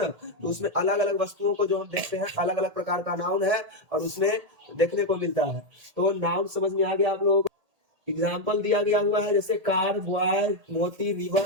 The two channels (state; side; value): late; left; 1.8 ms